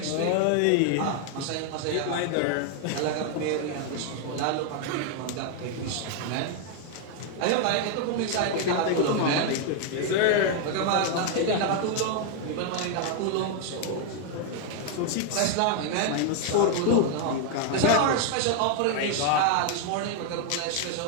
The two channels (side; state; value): both; different; correlation 0.00